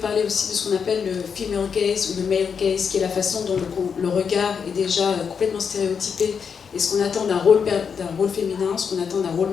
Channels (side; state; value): right; quieter; 6.5 dB